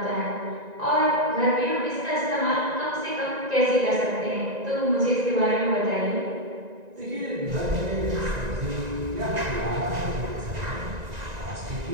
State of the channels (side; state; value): left; late; 1.9 ms